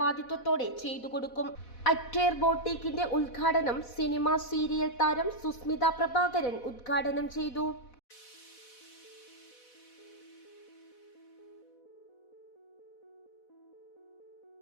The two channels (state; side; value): late; right; 4.1 ms